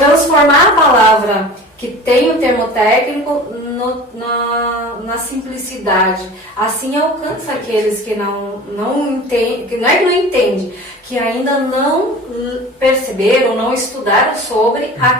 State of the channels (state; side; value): normal; both; correlation 0.38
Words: a palavra que tem o termo técnico na simplicidade. Assim alcança aqueles que não entendem, que não é que não entende, que ainda não perceberam, não estudaram sobre